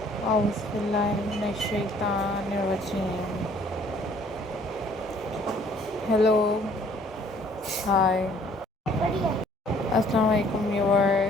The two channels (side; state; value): both; normal; correlation 0.59